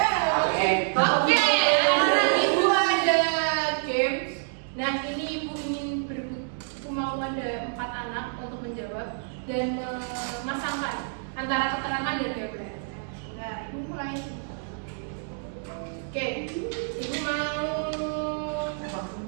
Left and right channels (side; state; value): left; silent; digital silence